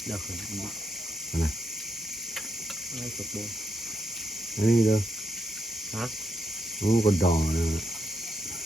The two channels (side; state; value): both; normal; correlation 0.81